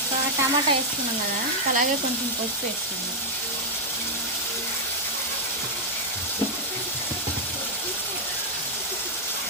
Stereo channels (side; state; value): both; normal; correlation -0.03